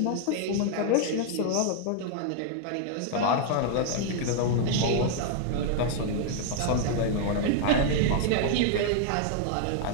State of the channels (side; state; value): both; different; correlation 0.00